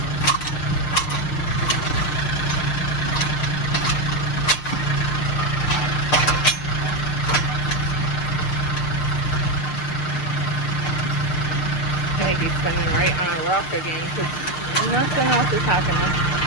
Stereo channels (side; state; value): right; late; 6.6 ms